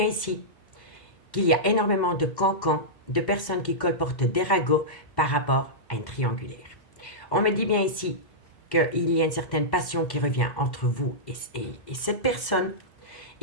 ici qu'il y a énormément de cancans, de personnes qui colportent des ragots par rapport à une triangulaire. On me dit bien ici qu'il y a une certaine passion qui revient entre vous et cette personne.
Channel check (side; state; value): right; late; 2.0 ms